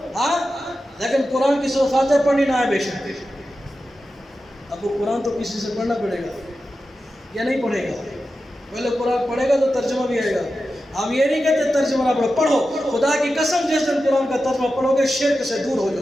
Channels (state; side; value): normal; both; correlation 0.92